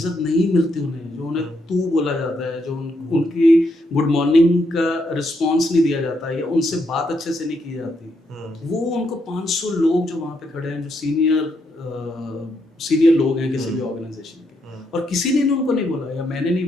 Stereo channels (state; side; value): normal; both; correlation 0.78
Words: नहीं मिलती उन्हें, जो उन्हें तू बोला जाता है, जो उनकी गुड मॉर्निंग का रिस्पॉन्स नहीं दिया जाता है या उनसे बात अच्छे से नहीं की जाती, वो उनको 500 लोग जो वहाँ पे खड़े हैं, जो सीनियर लोग हैं किसी भी ऑर्गेनाइजेशन के, और किसी ने उनको नहीं बोला या मैंने नहीं